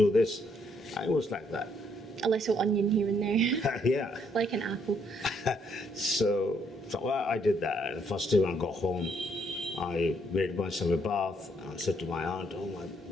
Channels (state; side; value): normal; both; correlation 0.71